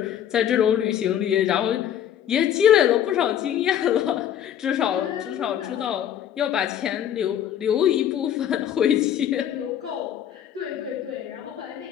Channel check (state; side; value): quieter; right; 10.1 dB